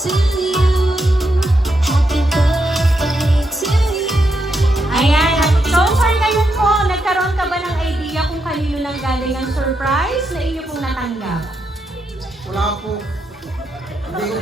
Ayan. So, sir, ngayon po, nagkaroon ka ba ng idea kung kanino nang galing ang surprise na inyo pong natanggap? Wala po. Hindi ko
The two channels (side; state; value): both; normal; correlation 0.82